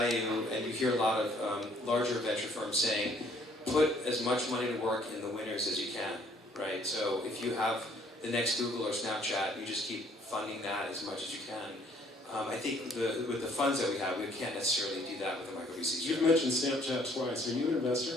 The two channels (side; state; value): both; normal; correlation 0.62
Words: and you hear a lot of larger venture firms saying, put as much money to work in the winners as you can, right? So if you have the next Google or Snapchat, you just keep funding that as much as you can. I think with the funds that we have, we can't necessarily do that with the micro VCs. You've mentioned Snapchat twice. Are you an